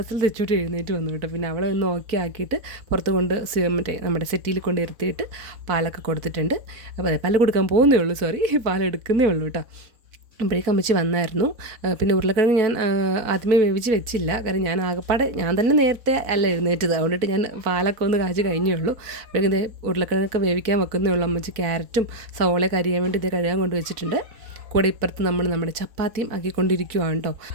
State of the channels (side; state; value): left; late; 4.1 ms